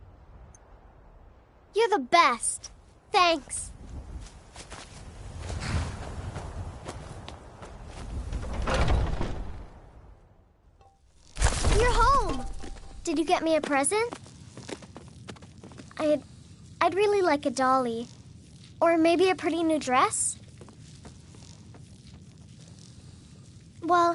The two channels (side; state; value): both; identical; correlation 1.00